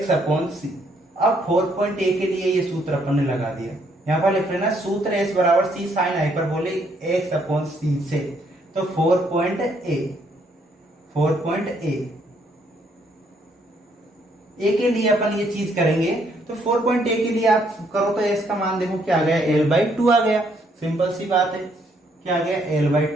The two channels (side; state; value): both; normal; correlation 0.70